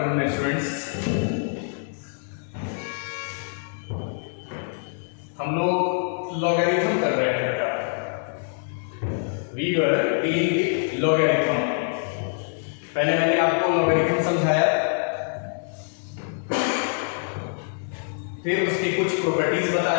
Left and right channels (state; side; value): silent; right; digital silence